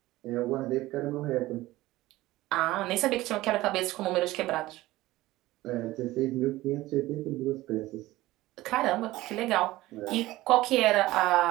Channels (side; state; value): left; quieter; 17.6 dB